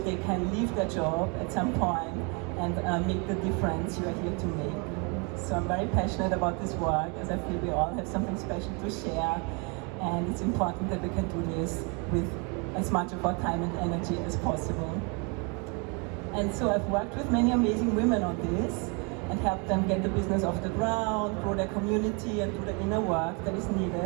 can leave their job at some point and make the difference you are here to make. So I'm very passionate about this work as I feel we all have something special to share, and it's important that we can do this with as much of our time and energy as possible. And so I've worked with many amazing women on this and help them get the business off the ground, grow their community, and do the inner work that is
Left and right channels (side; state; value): left; quieter; 32.9 dB